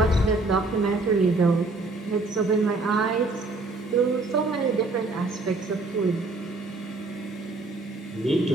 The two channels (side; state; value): left; quieter; 3.3 dB